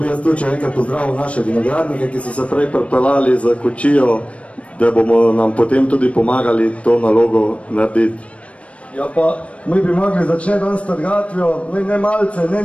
jaz tudi še enkrat pozdravil naše vinogradnike, ki so se prej pripeljali za kočijo, da bomo nam potem tudi pomagali to nalogo narediti. Ja pa, mi bi mogli začeti dan s trgatvijo, ne malce, ne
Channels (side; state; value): right; late; 0.063 ms